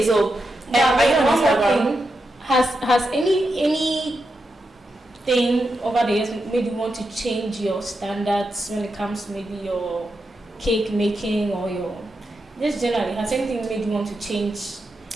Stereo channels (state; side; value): normal; both; correlation 0.87